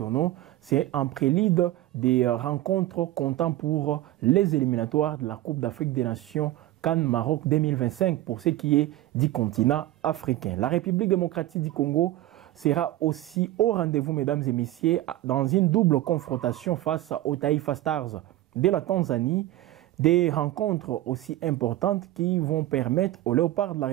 C'est en prélude des rencontres comptant pour les éliminatoires de la Coupe d'Afrique des Nations CAN Maroc 2025 pour ce qui est du continent africain. La République démocratique du Congo sera aussi au rendez-vous, mesdames et messieurs, dans une double confrontation face aux Taifa Stars de la Tanzanie. Des rencontres aussi importantes qui vont permettre aux Léopards de la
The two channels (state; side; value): quieter; left; 15.3 dB